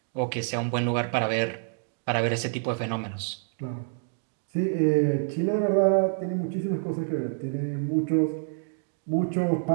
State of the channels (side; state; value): left; silent; digital silence